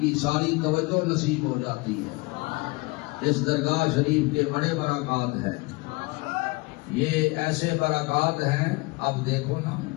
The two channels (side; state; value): right; quieter; 25.1 dB